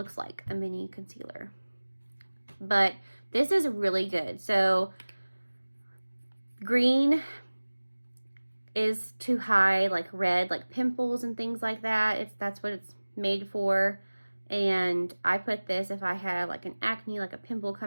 like a mini concealer. But this is really good. So green is to hide like red, like pimples and things like that. That's what it's made for. And I put this if I have like an acne, like a pimple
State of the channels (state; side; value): inverted; both; correlation -1.00